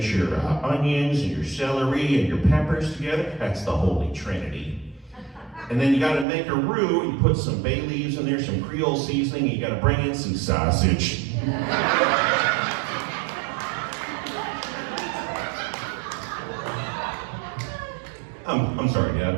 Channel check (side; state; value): left; drops out; at 6.2 s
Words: your onions and your celery and your peppers together. That's the Holy Trinity. And then you gotta make a roux, and you put some bay leaves in there, some Creole seasoning, and you gotta bring in some sausage. I'm sorry, Dad,